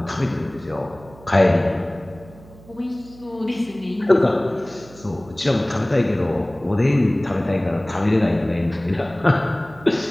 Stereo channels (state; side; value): noise; right; hum, 22 dB below the sound